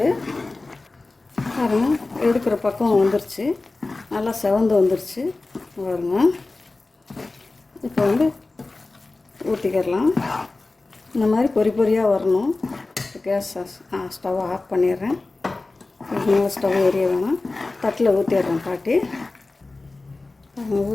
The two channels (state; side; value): quieter; right; 3.3 dB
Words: பாருங்க, எடுக்கிற பக்கம் வந்துருச்சு, நல்லா செவந்து வந்துருச்சு பாருங்க. இப்போ வந்து ஊற்றிக்கிடலாம். இந்த மாதிரி பொறியாக வரணும். கேஸ் ஸ்டவ் ஆஃப் பண்ணிடுறேன். இன்னும் ஸ்டவ் எரிய வேணாம். தட்டில் ஊற்றிடுறேன் பாட்டி.